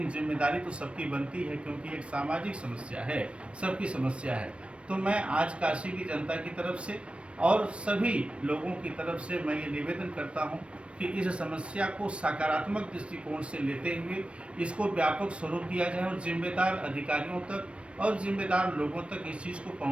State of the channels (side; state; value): left; late; 0.060 ms